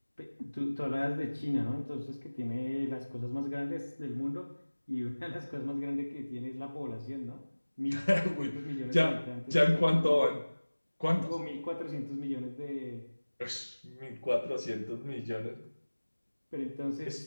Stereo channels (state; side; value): inverted; both; correlation -1.00